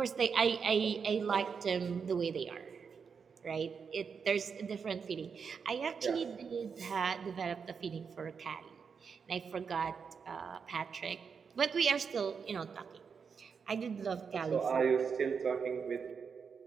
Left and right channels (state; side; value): quieter; left; 6.0 dB